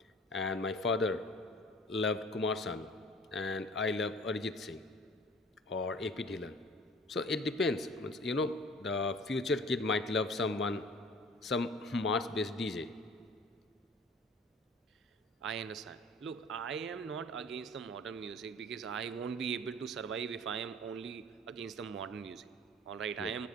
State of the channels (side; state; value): both; normal; correlation 0.47